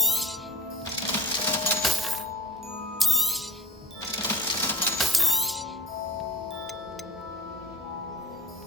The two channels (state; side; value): normal; both; correlation 0.32